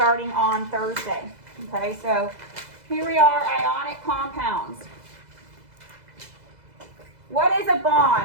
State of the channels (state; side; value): late; left; 2.0 ms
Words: on Thursday. Okay, so here we are, ionic compounds. What is a